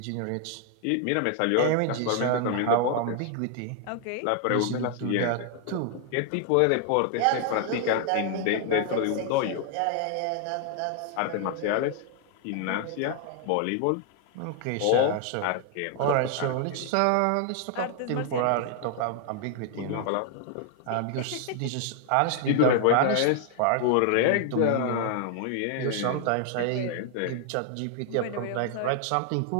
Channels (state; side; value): different; both; correlation 0.00